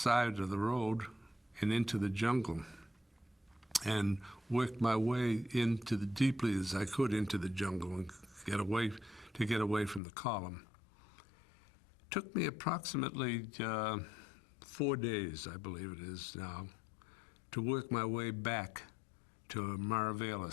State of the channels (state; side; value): drops out; right; at 10.0 s